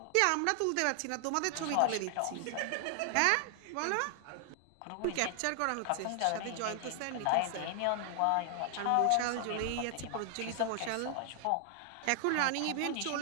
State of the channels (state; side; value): different; both; correlation 0.00